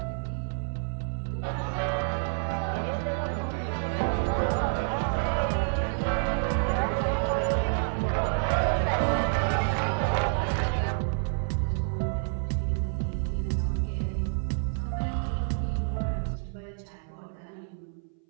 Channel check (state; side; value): silent; left; 59 dB below the other